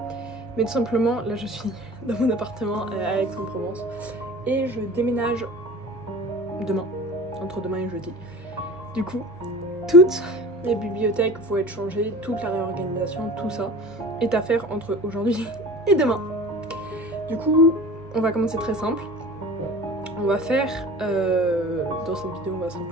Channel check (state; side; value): normal; both; correlation 0.39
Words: Mais tout simplement, là je suis dans mon appartement à Aix-en-Provence. Et je déménage demain, entre demain et jeudi. Du coup, toutes les bibliothèques vont être changées, toute la réorganisation, tout ça est à faire entre aujourd'hui et demain. Du coup, on va commencer très simple. On va faire, dans cette vidéo, on va